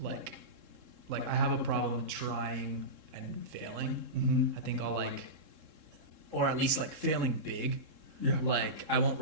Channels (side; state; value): left; late; 3.7 ms